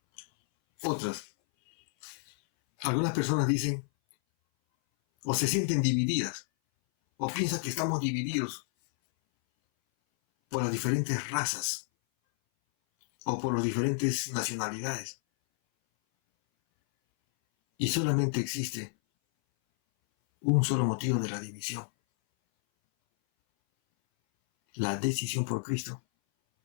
Algunas personas dicen o se sienten divididas o piensan que estamos divididos por las diferentes razas o por las diferentes nacionalidades. Y solamente existe un solo motivo de la división: la decisión por Cristo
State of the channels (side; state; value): right; silent; 58 dB below the other